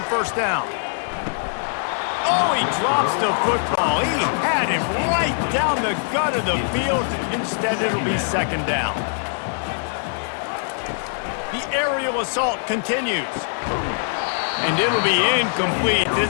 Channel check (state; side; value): silent; right; digital silence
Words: first down. Oh, he drops the football. He had him right down the gut of the field. Instead, it'll be second down. The aerial assault continues. And it'll be incomplete.